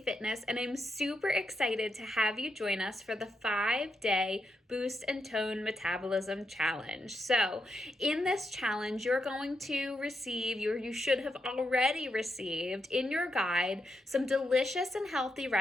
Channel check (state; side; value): normal; both; correlation 0.83